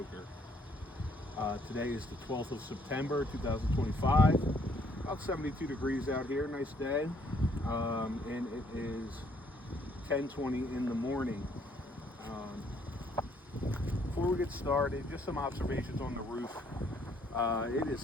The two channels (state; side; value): normal; both; correlation 0.66